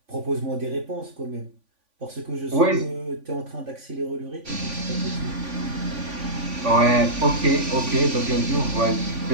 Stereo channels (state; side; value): late; left; 3.5 ms